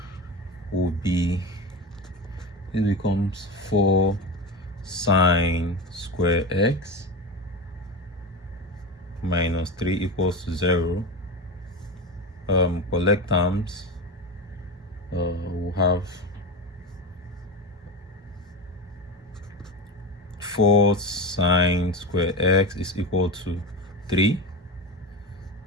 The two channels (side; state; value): both; normal; correlation 0.23